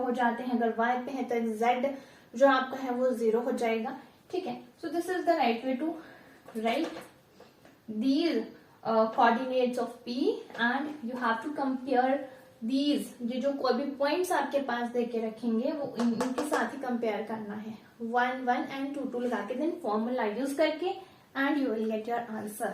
जाते हैं, अगर y पे है तो z जो आपका है वो 0 हो जाएगा। ठीक है, so this is the right way to write these coordinates of p and you have to compare these, ये जो कोई भी पॉइंट्स आपके पास दे के रखेंगे वो इनके साथ ही कंपेयर करना है, 1 1 एंड 2 2 लगा के देन फॉर्मूला यूज करके and you will get your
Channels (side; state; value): both; identical; correlation 1.00